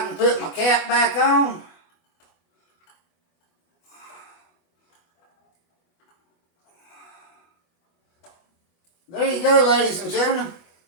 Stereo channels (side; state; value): right; late; 24 ms